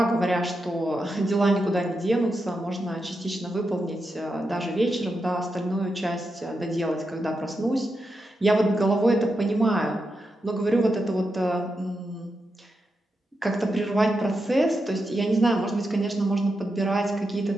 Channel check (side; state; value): both; normal; correlation 0.87